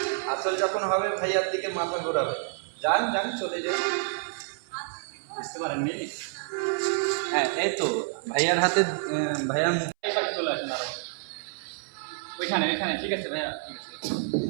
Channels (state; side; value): silent; left; 59 dB below the other